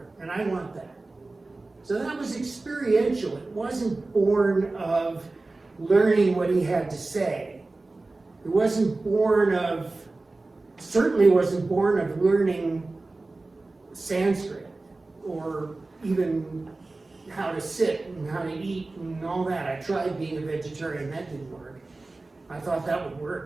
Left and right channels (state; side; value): quieter; left; 3.3 dB